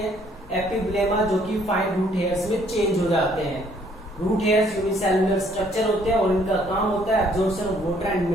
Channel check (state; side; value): normal; both; correlation 0.63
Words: एपिब्लेमा जो कि फाइन रूट हेयर्स में चेंज हो जाते हैं। रूट हेयर्स यूनिसेल्युलर स्ट्रक्चर होते हैं और इनका काम होता है absorption of water and